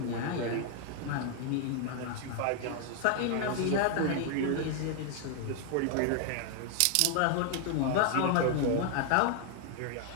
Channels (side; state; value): both; different; correlation 0.00